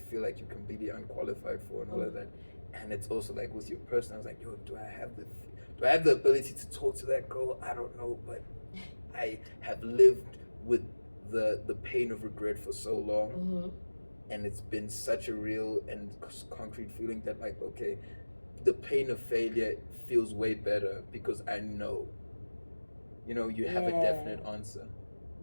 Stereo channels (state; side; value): inverted; both; correlation -1.00